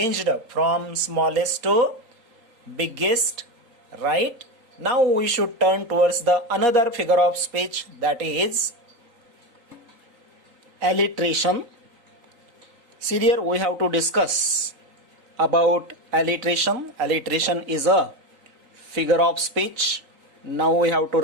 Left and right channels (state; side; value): late; left; 3.8 ms